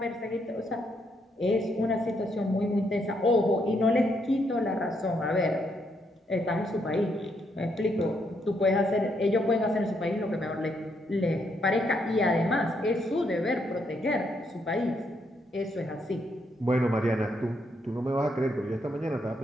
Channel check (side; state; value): both; normal; correlation 0.76